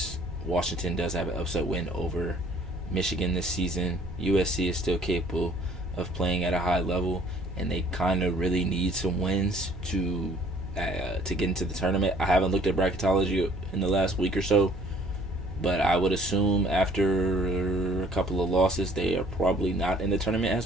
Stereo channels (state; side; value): normal; both; correlation 0.57